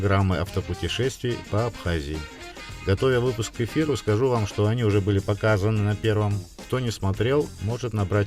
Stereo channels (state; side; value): identical; both; correlation 1.00